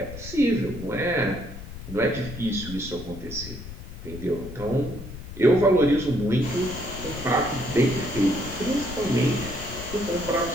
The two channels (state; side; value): noise; left; rumble, 11 dB below the sound